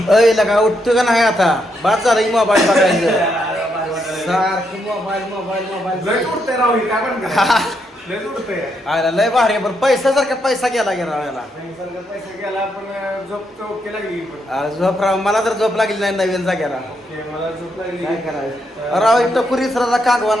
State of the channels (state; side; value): normal; both; correlation 0.79